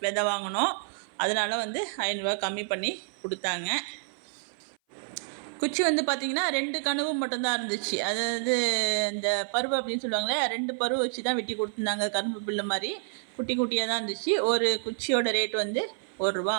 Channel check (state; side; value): silent; left; 57 dB below the other